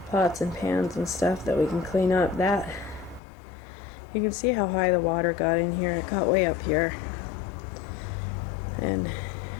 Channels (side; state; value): right; drops out; at 3.2 s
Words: pots and pans and stuff that we can clean up. That, you can see how high the water got in here. It got way up here. And